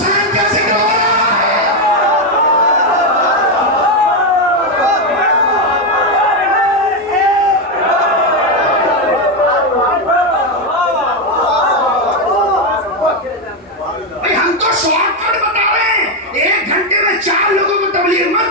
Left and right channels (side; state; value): both; normal; correlation 0.06